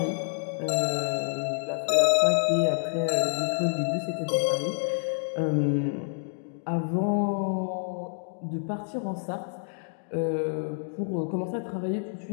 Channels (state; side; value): silent; right; digital silence